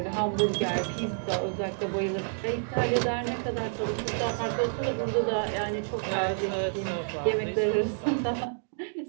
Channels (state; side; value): silent; left; digital silence